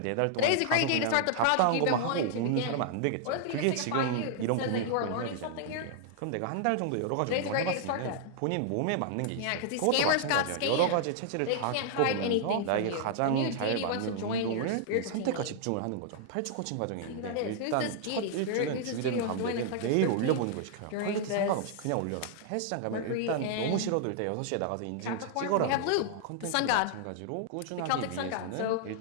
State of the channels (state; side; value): different; both; correlation -0.01